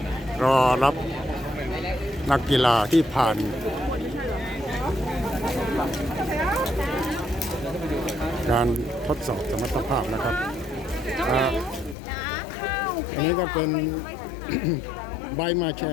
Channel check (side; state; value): right; drops out; at 12.0 s